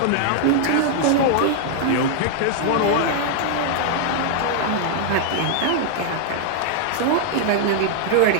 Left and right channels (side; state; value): both; different; correlation -0.01